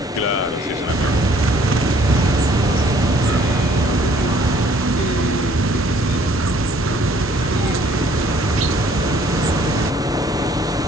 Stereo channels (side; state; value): both; normal; correlation 0.60